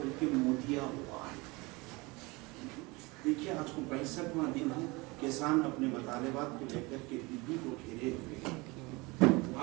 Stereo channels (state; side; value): quieter; left; 24.7 dB